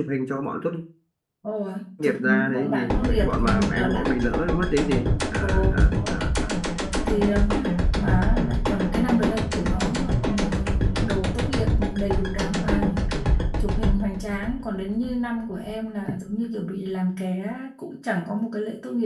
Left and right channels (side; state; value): both; identical; correlation 1.00